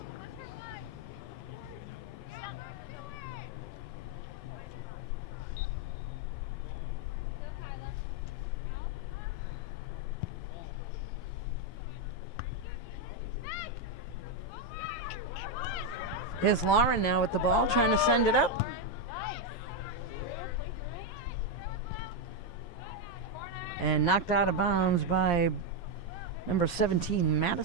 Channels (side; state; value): right; late; 11 ms